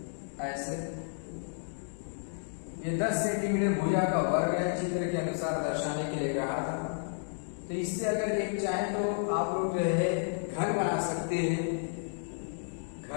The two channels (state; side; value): silent; right; digital silence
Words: ऐसे, ये 10 सेंटीमीटर भुजा का वर्ग है, चित्र के अनुसार दर्शाने के लिए कहा था। तो इससे अगर एक चाहे तो आप लोग जो है घन बना सकते हैं।